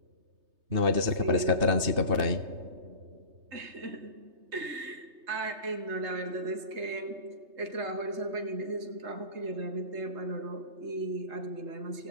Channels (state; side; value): late; left; 3.3 ms